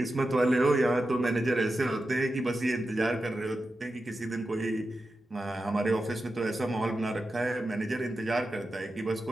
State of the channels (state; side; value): normal; both; correlation 0.91